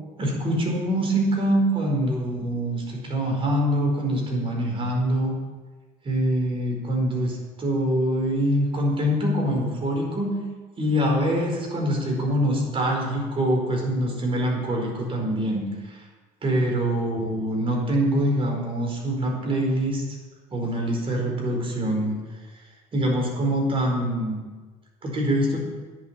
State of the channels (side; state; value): both; normal; correlation 0.53